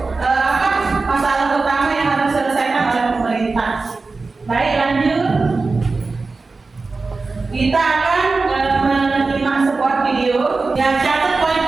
masalah utama yang harus diselesaikan oleh pemerintah. Baik, lanjut. Kita akan menyimak sebuah video yang catat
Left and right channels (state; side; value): quieter; left; 3.9 dB